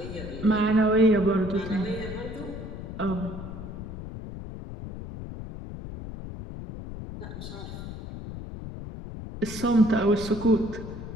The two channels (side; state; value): left; noise; rumble, 10 dB below the sound